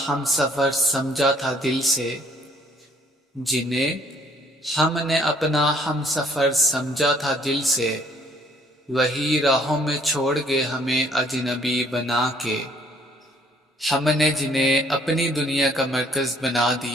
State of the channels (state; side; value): normal; both; correlation 0.62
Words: ہم سفر سمجھا تھا دل سے، جنہیں ہم نے اپنا ہم سفر سمجھا تھا دل سے، وہی راہوں میں چھوڑ گئے ہمیں اجنبی بنا کے۔ ہم نے جنہیں اپنی دنیا کا مرکز بنا